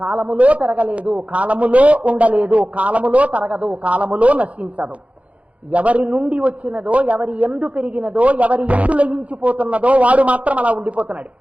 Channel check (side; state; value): left; late; 0.065 ms